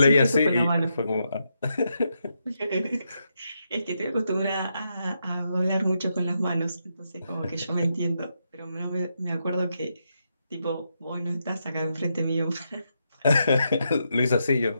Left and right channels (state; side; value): inverted; both; correlation -0.82